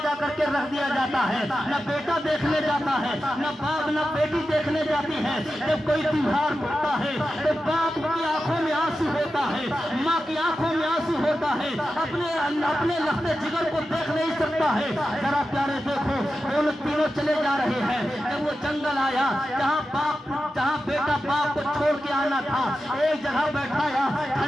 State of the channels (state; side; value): normal; both; correlation 0.91